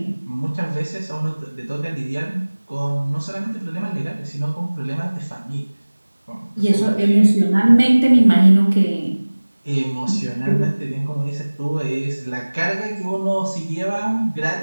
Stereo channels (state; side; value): inverted; both; correlation -1.00